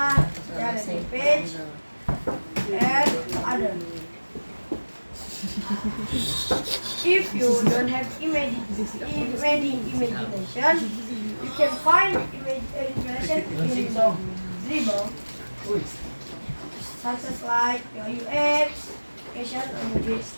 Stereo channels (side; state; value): both; inverted; correlation -1.00